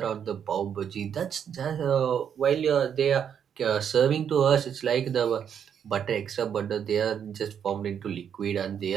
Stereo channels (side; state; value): left; quieter; 8.2 dB